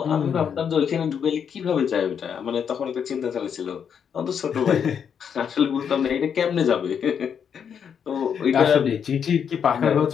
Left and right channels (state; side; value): quieter; right; 7.6 dB